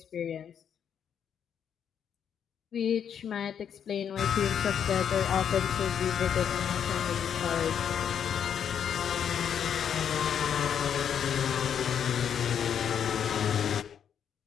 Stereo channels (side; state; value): right; quieter; 8.4 dB